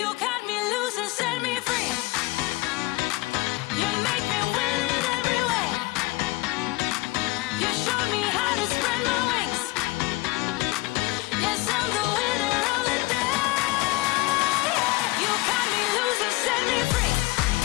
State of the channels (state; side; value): quieter; right; 21.3 dB